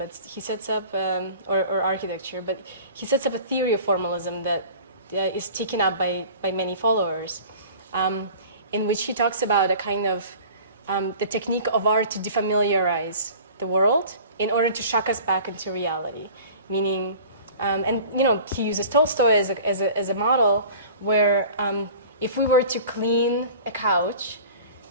he sets up, or architecture, but he sets up a theory of formalism that is taken up by many followers, in which he talks about a kind of the technique of art to defamiliarize the world in order to shock us back into reality, meaning, and he uses Tolstoy as a model where if we were to clean a couch,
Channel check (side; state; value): both; inverted; correlation -0.43